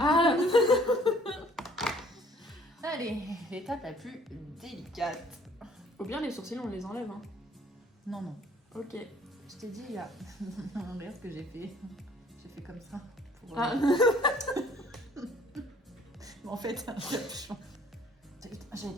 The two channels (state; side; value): normal; both; correlation 0.58